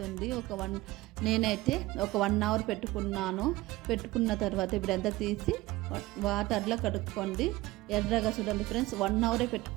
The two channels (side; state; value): left; quieter; 19.0 dB